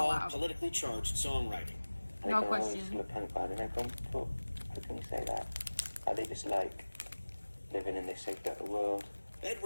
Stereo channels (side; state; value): both; inverted; correlation -1.00